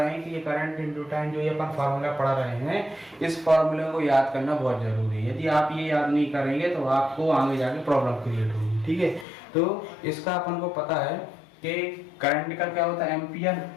हैं कि ये करंट इनटू टाइम जो ये अपन फार्मूला पढ़ रहे हैं, इस फार्मूले को याद करना बहुत जरूरी है। यदि आप ये याद नहीं करेंगे तो आपको आगे जाके प्रॉब्लम क्रिएट होगी। ठीक है, तो इसका अपन को पता है कि करंट का क्या होता है एम्पियर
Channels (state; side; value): drops out; right; at 9.2 s